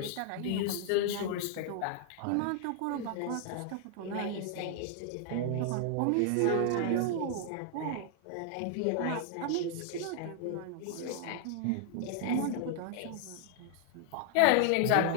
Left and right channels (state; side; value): different; both; correlation 0.00